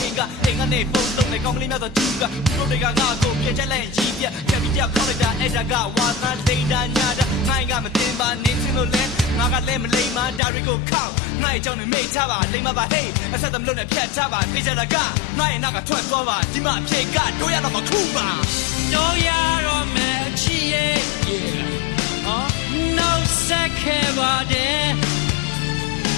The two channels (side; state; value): right; drops out; at 10.4 s